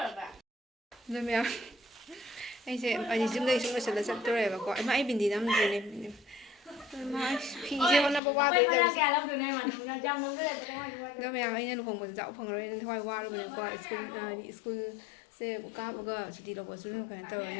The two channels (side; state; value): right; drops out; at 8.2 s